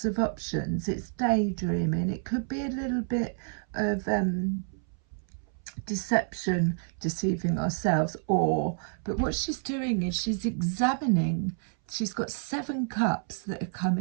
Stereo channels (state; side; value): silent; left; 58 dB below the other